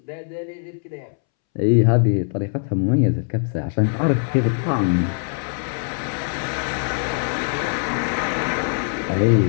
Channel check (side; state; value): right; silent; 64 dB below the other